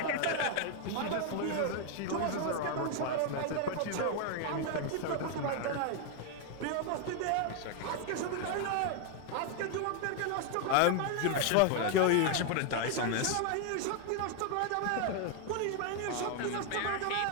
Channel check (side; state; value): both; different; correlation 0.01